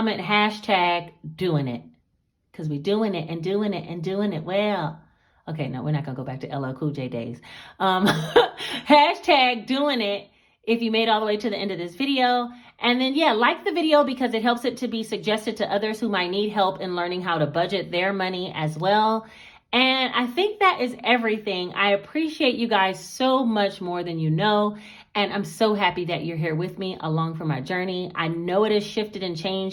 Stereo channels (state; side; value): identical; both; correlation 1.00